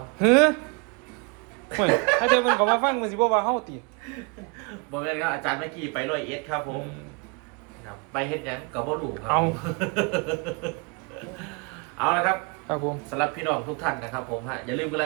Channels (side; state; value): left; quieter; 31.3 dB